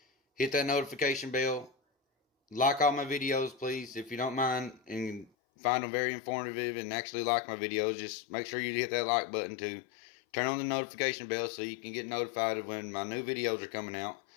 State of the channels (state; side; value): drops out; right; at 5.3 s